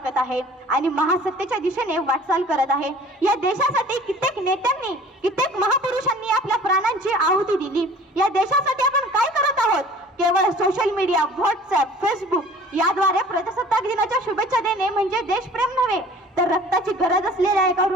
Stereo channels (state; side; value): normal; both; correlation 0.48